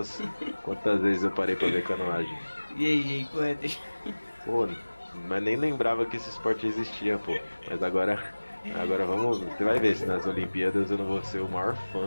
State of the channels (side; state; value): both; inverted; correlation -1.00